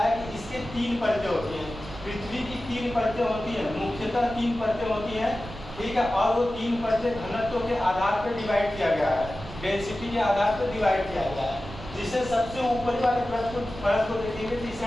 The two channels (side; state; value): right; noise; rumble, 13 dB below the sound